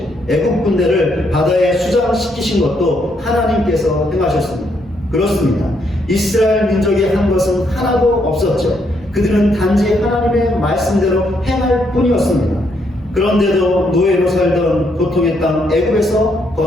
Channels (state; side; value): normal; both; correlation 0.74